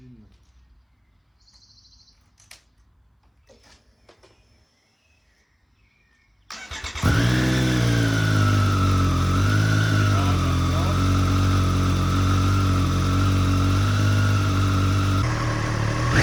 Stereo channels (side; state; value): both; identical; correlation 1.00